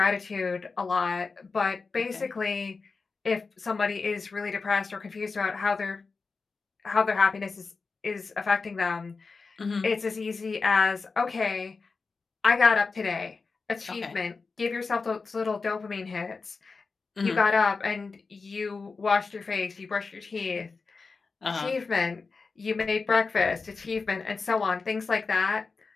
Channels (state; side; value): quieter; right; 4.4 dB